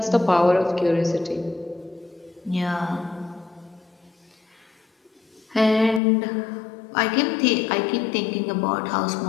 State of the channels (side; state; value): right; drops out; at 6.0 s